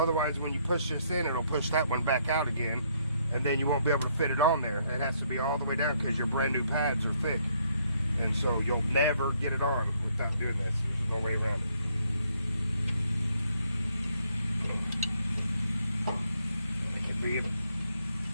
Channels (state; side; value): inverted; both; correlation -0.70